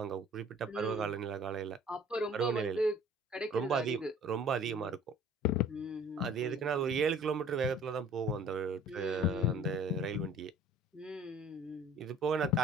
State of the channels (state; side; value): normal; both; correlation 0.51